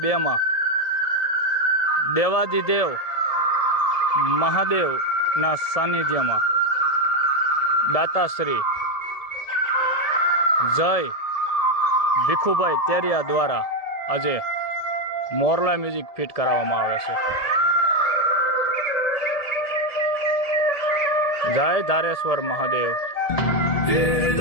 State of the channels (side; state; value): right; late; 1.7 ms